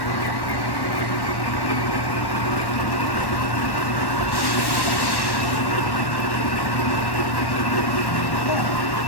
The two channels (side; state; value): right; late; 1.1 ms